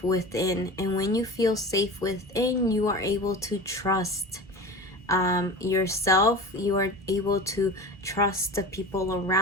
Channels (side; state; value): both; normal; correlation 0.33